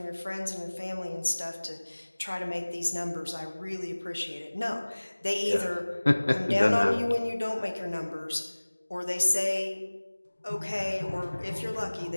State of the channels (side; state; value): both; inverted; correlation -1.00